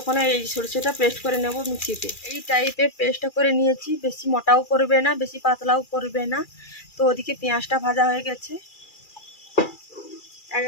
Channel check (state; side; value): late; right; 2.4 ms